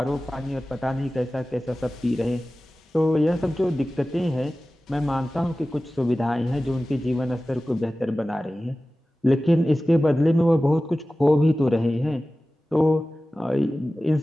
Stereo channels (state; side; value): normal; both; correlation 0.96